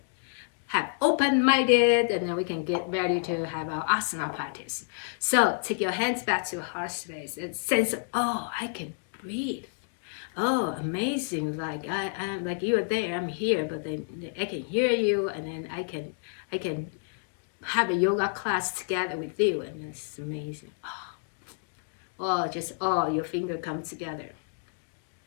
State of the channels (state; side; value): silent; right; digital silence